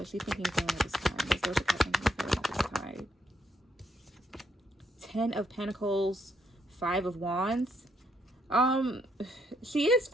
is she thinking and feeling at this time? What is Doja Cat thinking and feeling at this time? 10 of Pentacles, 5 of Wands. She is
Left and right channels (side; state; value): both; normal; correlation 0.74